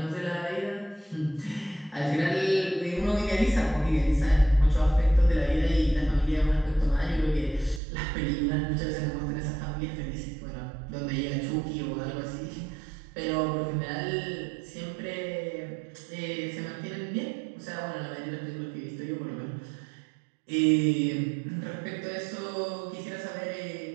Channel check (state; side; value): drops out; left; at 7.8 s